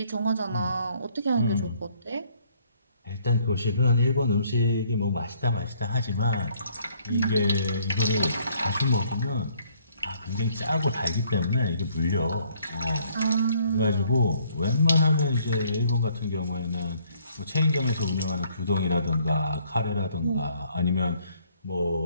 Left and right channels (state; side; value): inverted; both; correlation -0.64